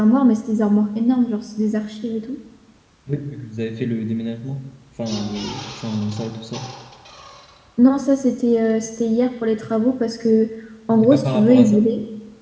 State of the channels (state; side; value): identical; both; correlation 1.00